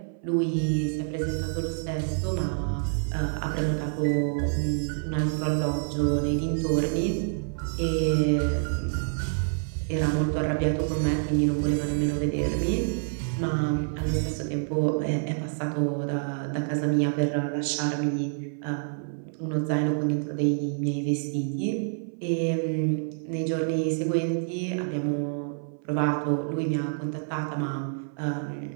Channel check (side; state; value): left; silent; 59 dB below the other